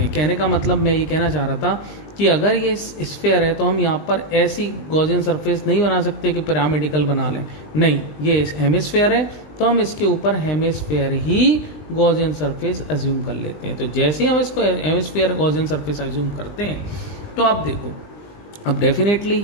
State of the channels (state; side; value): late; right; 20 ms